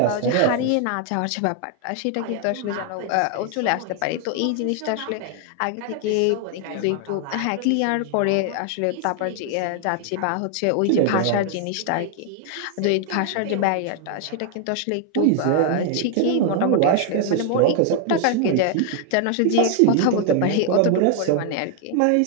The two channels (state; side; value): different; both; correlation 0.00